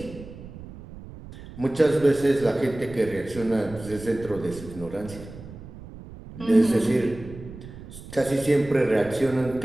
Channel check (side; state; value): right; noise; rumble, 15 dB below the sound